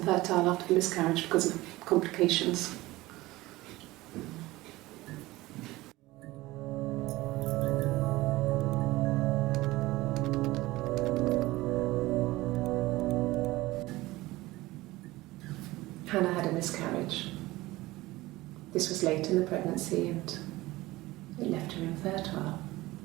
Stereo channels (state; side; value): quieter; left; 18.9 dB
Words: after the miscarriage because of complications. Hannah had a miscarriage. This was late in the pregnancy and it left her infertile.